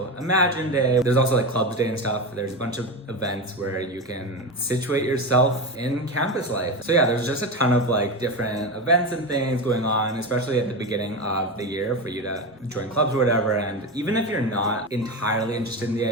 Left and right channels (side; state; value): both; normal; correlation 0.19